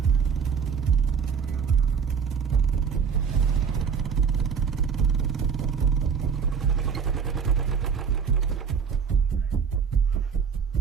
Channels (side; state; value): left; quieter; 6.6 dB